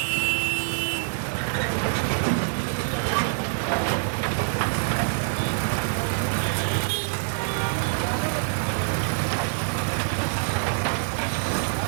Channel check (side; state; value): left; silent; digital silence